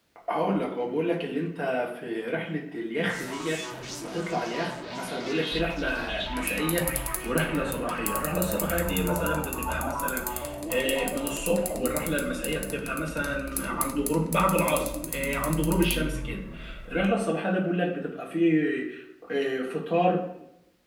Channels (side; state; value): both; identical; correlation 1.00